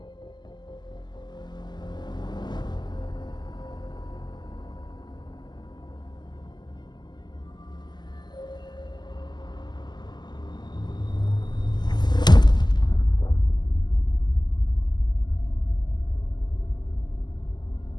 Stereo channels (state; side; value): late; right; 0.21 ms